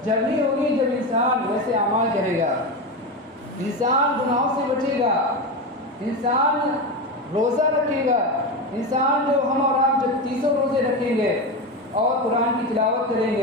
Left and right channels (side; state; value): both; normal; correlation 0.18